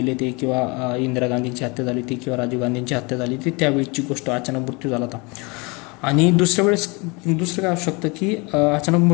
ते, किंवा इंदिरा गांधींची हत्या झाली होती, किंवा राजीव गांधींची हत्या झाली होती, त्यावेळीची गोष्ट, अचानक मृत्यू झाला होता. आणि दुसरं काय असू शकतं की अचानक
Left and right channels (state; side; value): quieter; right; 28.3 dB